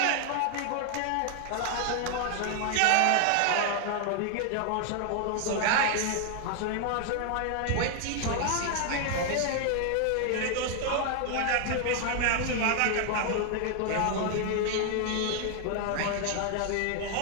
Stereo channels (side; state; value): both; different; correlation 0.00